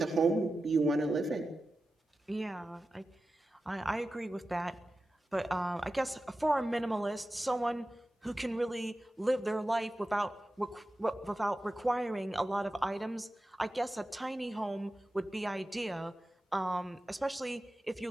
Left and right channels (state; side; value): normal; both; correlation 0.93